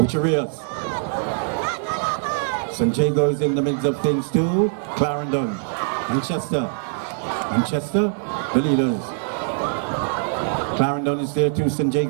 St. Jago is in the midst of things too. Clarendon, Manchester, the leaders. Clarendon is there too, St.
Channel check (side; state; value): left; silent; digital silence